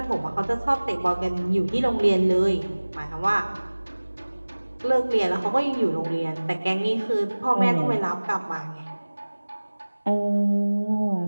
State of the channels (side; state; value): both; inverted; correlation -1.00